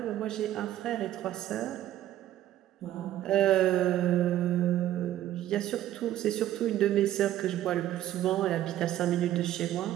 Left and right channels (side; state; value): left; quieter; 12.8 dB